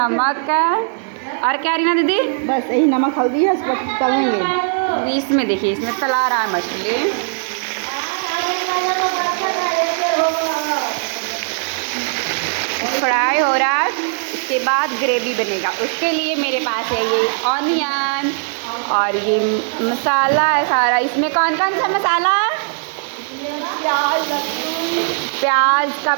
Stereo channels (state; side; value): silent; left; digital silence